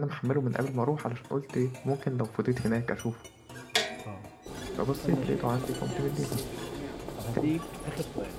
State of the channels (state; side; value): identical; both; correlation 1.00